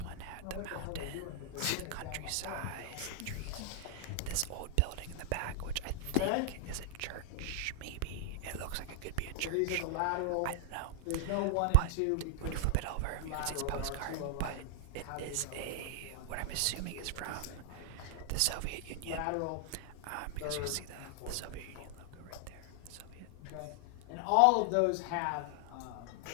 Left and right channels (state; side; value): different; both; correlation 0.00